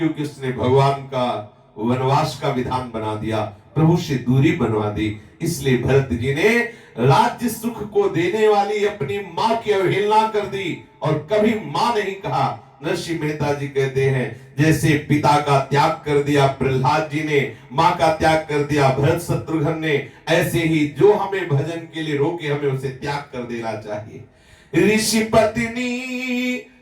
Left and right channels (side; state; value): both; identical; correlation 1.00